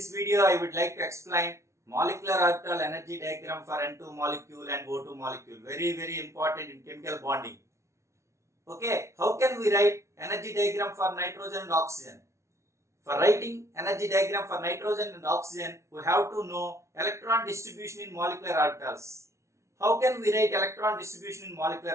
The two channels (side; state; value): left; late; 0.14 ms